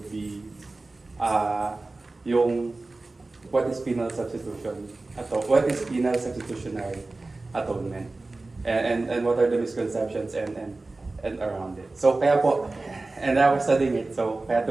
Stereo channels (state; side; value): quieter; left; 3.3 dB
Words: be yung what is penal substitution, what is penal substitutionary atonement, and what are the misconceptions and around it. So kaya po, and I was studying it, so kaya